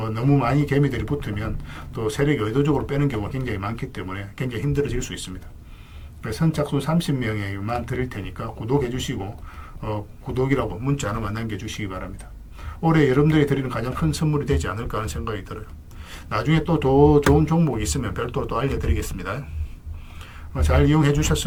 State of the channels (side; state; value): both; identical; correlation 1.00